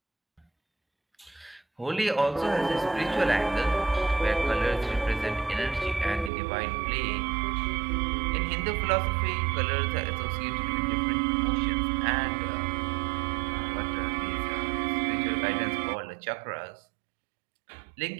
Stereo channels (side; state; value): left; drops out; at 6.3 s